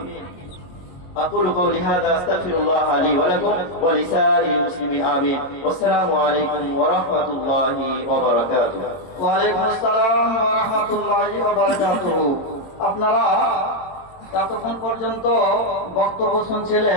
أقول قولي هذا أستغفر الله لي ولكم ولسائر المسلمين آمين والسلام عليكم ورحمة الله وبركاته। ওয়ালাইকুম আসসালাম ওয়া রাহমাতুল্লাহি ওয়া বারাকাতুহু। আপনারা এতক্ষণ পর্যন্ত বক্তব্য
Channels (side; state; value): right; late; 22 ms